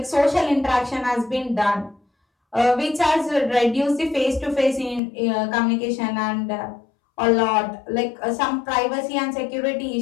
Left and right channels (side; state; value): right; drops out; at 5.0 s